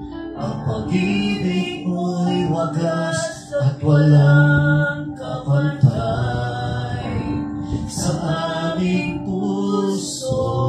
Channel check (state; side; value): identical; both; correlation 1.00